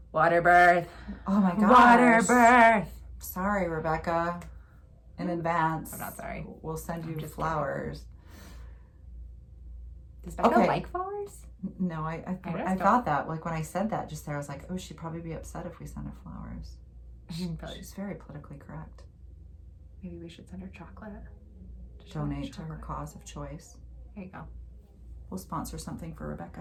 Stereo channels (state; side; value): identical; both; correlation 1.00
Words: Waterbirth. oh my gosh. Waterbirth. Sorry, Rebecca. In advance. I'm not sorry. We'll send you flowers. Does Becca Okay. like flowers? No, I don't. thought that. Like when I said that just there, I was like, oh, she'd probably be upset if we sent her flowers. Probably. She's very politically correct. Maybe we should send her chocolate. Donate to her cause of choice. There you go. We'll sponsor something for